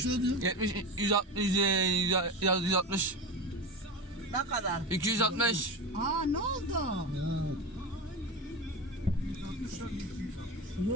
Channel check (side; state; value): both; normal; correlation 0.22